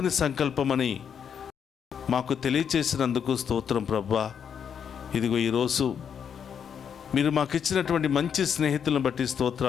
సంకల్పమని మాకు తెలియచేసినందుకు స్తోత్రం ప్రభువా. ఇదిగో ఈరోజు మీరు మాకు ఇచ్చినటువంటి మంచి స్నేహితులను బట్టి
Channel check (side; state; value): right; quieter; 7.7 dB